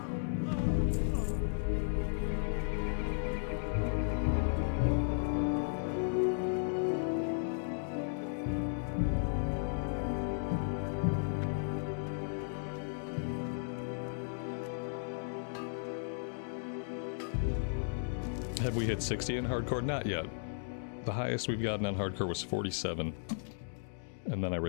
Have we hit 60 in hardcore? Not yet. The highest we've gotten on hardcore was 47. And then I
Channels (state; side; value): silent; right; digital silence